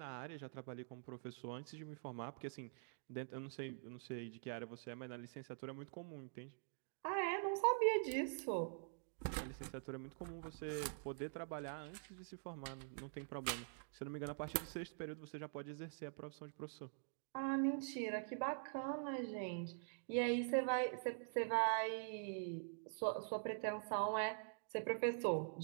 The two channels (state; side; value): silent; left; digital silence